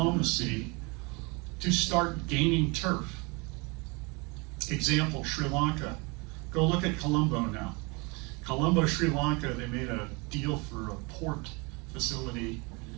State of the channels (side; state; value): left; quieter; 28.5 dB